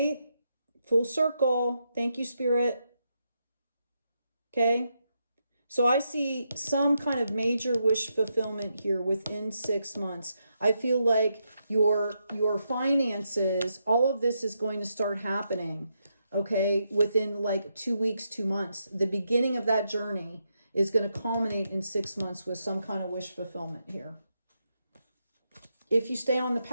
Full circle. Thank you, Spirit. Okay. So I see some kind of major wish fulfillment here within 6 months. I feel like your finances, all of this is going to start happening, okay, within like 2 weeks, 2 months. The beginning of that journey is going to culminate in 6 months with some kind of wish fulfillment here. If you stay on the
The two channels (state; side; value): inverted; both; correlation -0.82